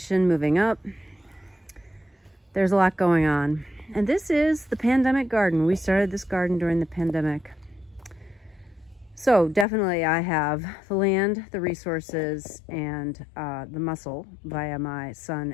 moving up, there's a lot going on. And this is the pandemic garden. We started this garden during the pandemic. So definitely I have the land, the resources, and the muscle via my son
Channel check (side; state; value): right; drops out; at 9.7 s